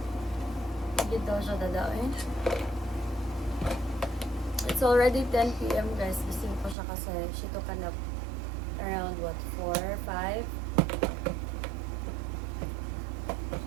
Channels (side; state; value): left; drops out; at 6.8 s